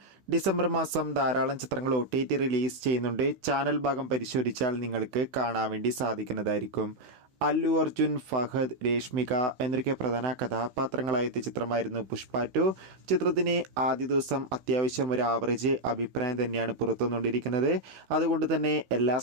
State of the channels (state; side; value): late; left; 15 ms